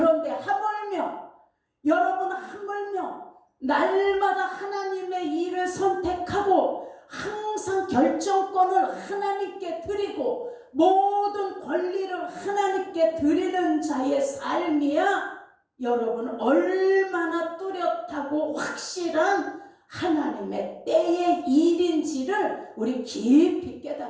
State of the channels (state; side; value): identical; both; correlation 1.00